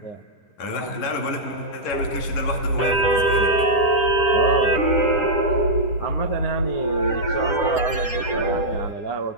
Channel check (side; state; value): right; late; 10 ms